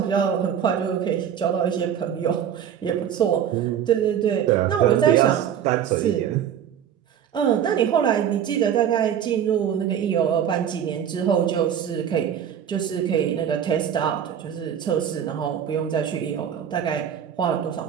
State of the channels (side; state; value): left; quieter; 9.1 dB